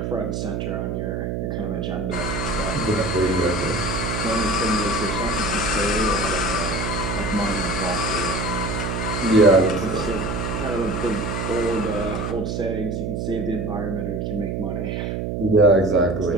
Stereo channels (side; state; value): right; noise; hum, 2 dB below the sound